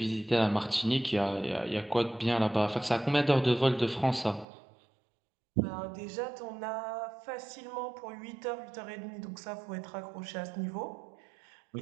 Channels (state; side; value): drops out; left; at 4.5 s